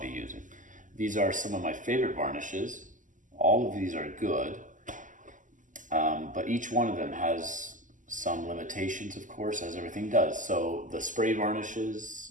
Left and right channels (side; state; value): left; late; 0.37 ms